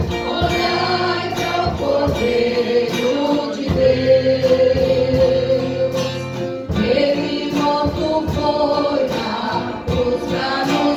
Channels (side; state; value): both; identical; correlation 1.00